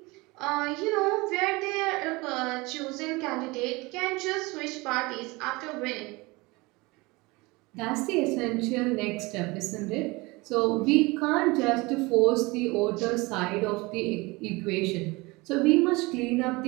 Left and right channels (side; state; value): left; quieter; 23.8 dB